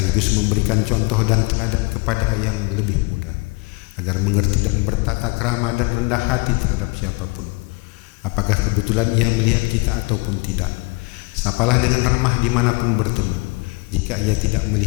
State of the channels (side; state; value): right; quieter; 28.3 dB